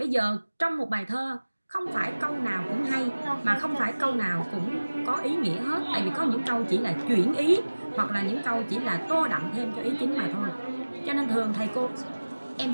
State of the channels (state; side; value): inverted; both; correlation -1.00